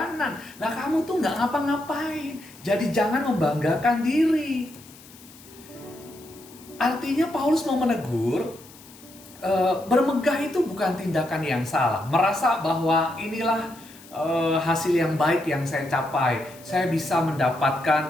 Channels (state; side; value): noise; left; hiss, 22 dB below the sound